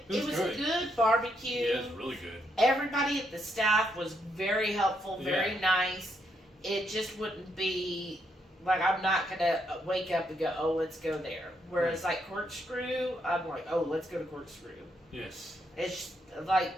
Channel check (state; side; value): normal; both; correlation 0.77